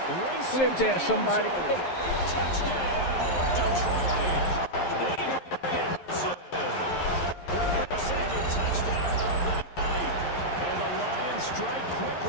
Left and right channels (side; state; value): right; late; 11 ms